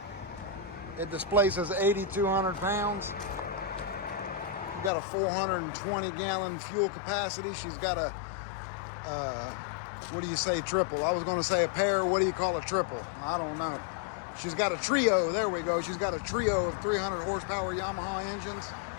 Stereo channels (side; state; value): right; drops out; at 4.9 s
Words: It displaces 8,200 pounds. Got a 420-gallon fuel capacity. She's got a, what do you say, triple? I was going to say a pair. What do you call a triple? I don't know. She's got a trio. There we go. She's got a trio of 300 horsepower Yamaha engines.